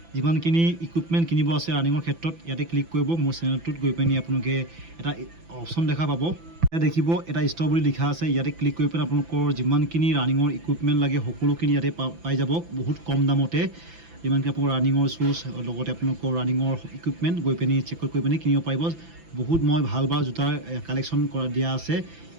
যিমানখিনি ইকুইপমেণ্ট কিনিব আছে ৰানিঙৰ ক্ষেত্ৰত ইয়াতে ক্লিক কৰিব মোৰ চেনেলটোত গৈ পিনি আপোনালোকে এটা অপশ্যন দেখা পাব ইয়াতে দেখিব এটা ষ্ট'ৰ বুলি লিখা আছে ইয়াতে ক্লিক কৰি পিনে আপোনালোকৰ যিমানখিনি ৰানিঙৰ ইকুইপমেণ্ট লাগে সকলোখিনি ইয়াতে পাই যাব বহুত কম দামতে যিমানখিনি আপোনালোকৰ ৰানিঙৰ শ্বুজ লগতে আপোনালোকৰ ৰানিঙৰ ইকুইপমেণ্ট গৈ পিনি চেক কৰি পিনি কিনিব পাৰিব বহুত মই ভাল জোতাৰ কালেকশ্যন দিয়া আছে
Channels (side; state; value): left; late; 6.0 ms